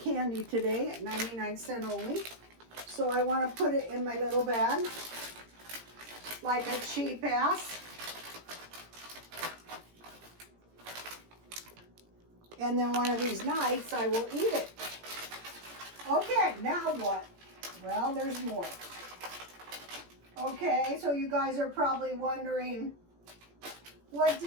today at 99 cents only. So I want to put it in my little bag like a cheap ass. And then one of these nights I will eat it. Okay, now what? Well, there's more. Okay, so you guys are probably wondering, what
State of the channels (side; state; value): left; late; 17 ms